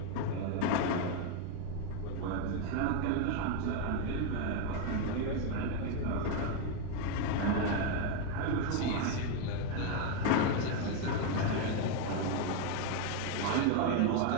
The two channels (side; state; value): both; different; correlation 0.02